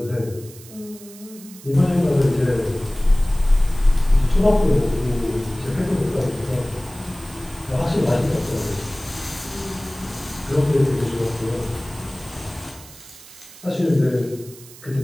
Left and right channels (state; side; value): noise; right; hiss, 19 dB below the sound